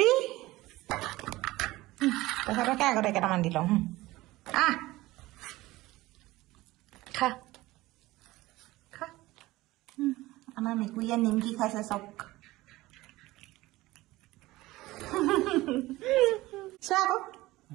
তহঁতকে আগতে কেইটামান দি লওঁ আহ খা খা আমাৰ মেকুৰীয়ে নিমকি খাইছে চক চোৱা আকৌ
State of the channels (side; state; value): left; quieter; 18.6 dB